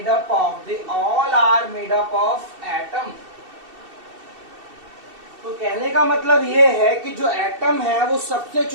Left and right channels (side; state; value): left; late; 2.7 ms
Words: up of atom. तो कहने का मतलब ये है कि जो एटम है वो सबसे